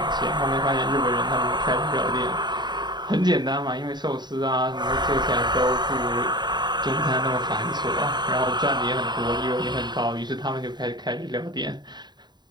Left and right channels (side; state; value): left; late; 0.21 ms